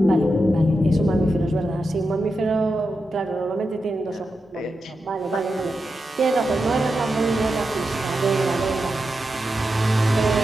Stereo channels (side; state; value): both; normal; correlation 0.89